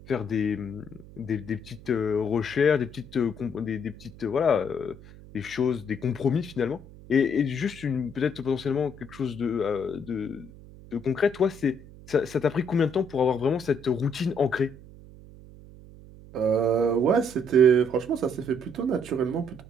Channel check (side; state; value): right; noise; hum, 19 dB below the sound